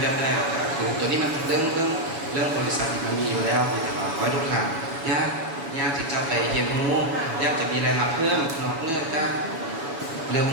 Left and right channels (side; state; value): left; late; 7.1 ms